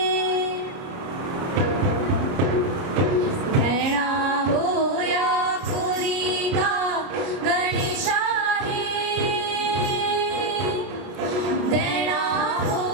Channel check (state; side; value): late; left; 30 ms